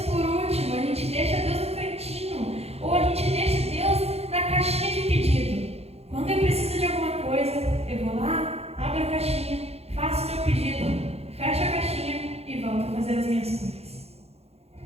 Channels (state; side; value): late; left; 0.30 ms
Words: por último, a gente deixa Deus no cantinho, ou a gente deixa Deus na caixinha de pedido. Quando eu preciso de alguma coisa, eu vou lá, abro a caixinha, faço meu pedido, fecho a caixinha e volto a fazer as minhas coisas.